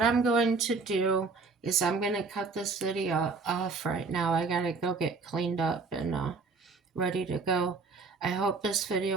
I'm going to do is I'm going to cut this video off right now. I gotta go get cleaned up and ready to go. I hope this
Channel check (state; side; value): quieter; left; 4.3 dB